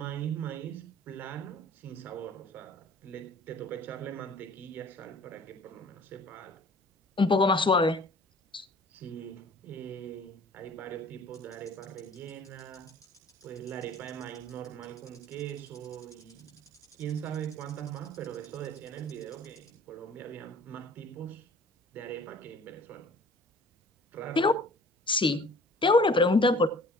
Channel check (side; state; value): both; normal; correlation 0.50